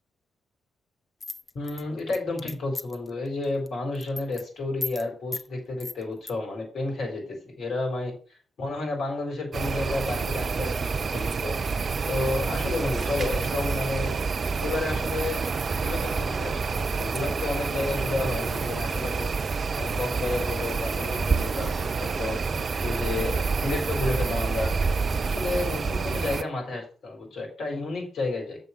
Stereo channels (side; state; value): both; normal; correlation 0.86